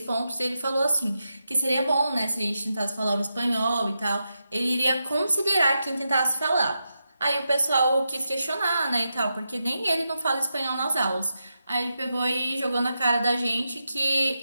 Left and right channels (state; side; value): inverted; both; correlation -0.87